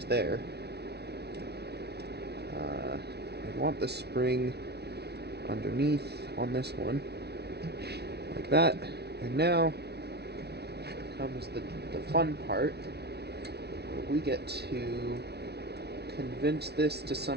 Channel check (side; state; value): left; late; 0.48 ms